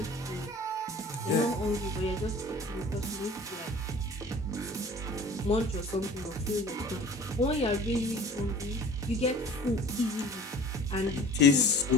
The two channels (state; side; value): normal; both; correlation 0.45